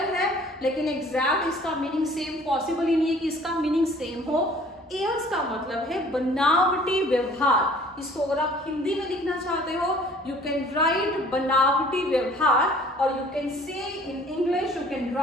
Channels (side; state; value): both; normal; correlation 0.53